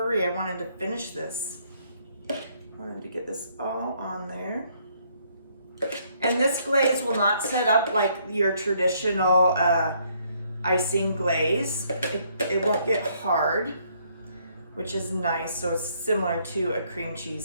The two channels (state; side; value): inverted; both; correlation -0.68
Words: I wanted to finish this. I wanted to get this all on there. And this glaze will not set up like your traditional icing glaze. It won't get hard, which is nice. So it's similar to a cream